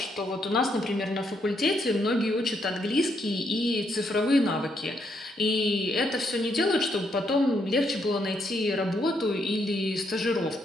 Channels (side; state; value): both; normal; correlation 0.76